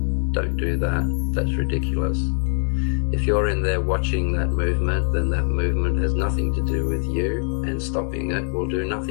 Don't do that. That's ridiculous. If you're in there watching that movement, then that movement has nothing to do with you, and stopping it will do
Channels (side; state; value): right; silent; digital silence